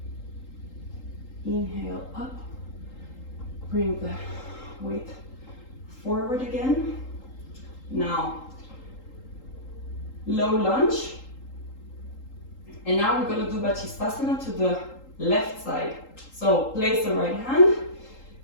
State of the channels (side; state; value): right; late; 3.8 ms